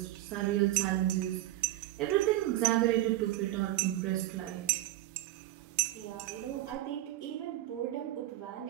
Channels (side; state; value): left; quieter; 15.4 dB